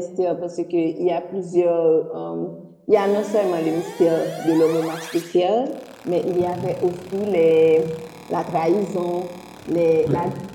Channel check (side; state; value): both; identical; correlation 1.00